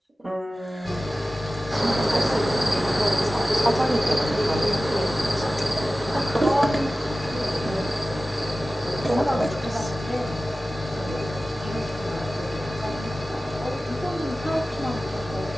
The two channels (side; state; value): both; normal; correlation 0.95